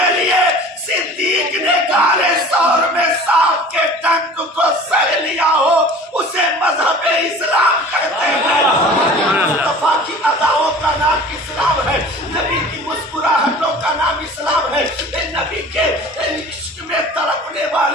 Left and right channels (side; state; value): both; normal; correlation 0.43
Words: لیے صدیق نے کالے سور میں سانپ کے ڈنک کو سہ لیا ہو، اسے مذہب اسلام کہتے ہیں۔ مصطفیٰ کی اداؤں کا نام اسلام ہے، نبی کی مسکراہٹوں کا نام اسلام ہے، نبی کے عشق میں تڑپنے